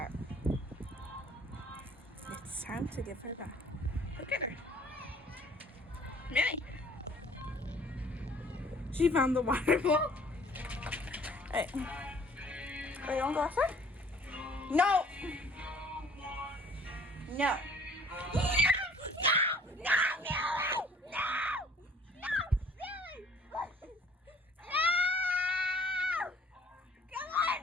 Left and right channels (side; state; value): both; normal; correlation 0.55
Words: It's time to give her a bath. Look at her. Millie. She found the water bowl. Hey. Oh, you want to go outside? No. No.